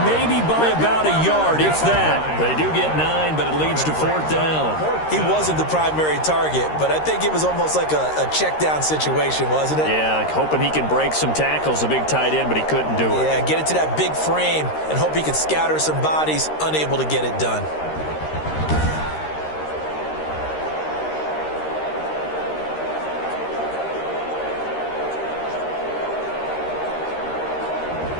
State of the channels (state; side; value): late; right; 13 ms